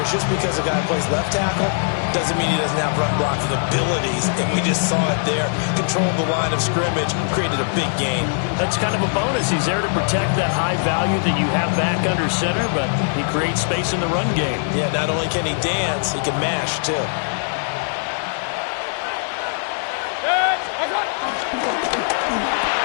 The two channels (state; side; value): silent; right; digital silence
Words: just because a guy plays left tackle doesn't mean he doesn't have run-blocking abilities, and we just saw it there. Controlled the line of scrimmage, created a big gain. That's kind of a bonus. He's there to protect that high value that you have back under center, but he creates space in the run game. Yeah, not only can he dance, he can mash, too.